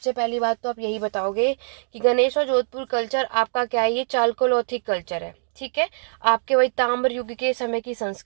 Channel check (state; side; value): silent; left; digital silence